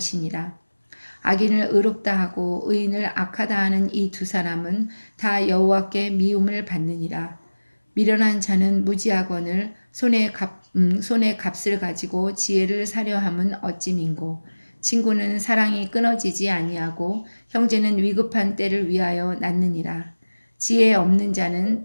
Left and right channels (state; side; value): inverted; both; correlation -1.00